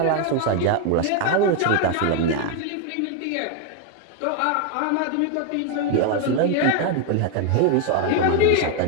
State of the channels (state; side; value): different; both; correlation 0.01